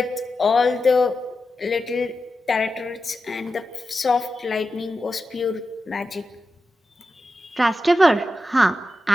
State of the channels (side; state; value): both; normal; correlation 0.90